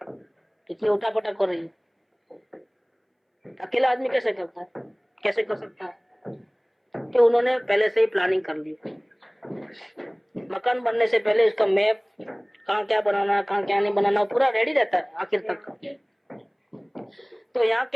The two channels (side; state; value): both; identical; correlation 1.00